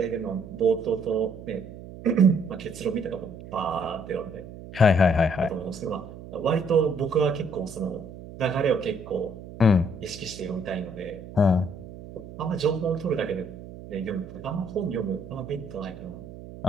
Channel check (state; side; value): noise; right; hum, 14 dB below the sound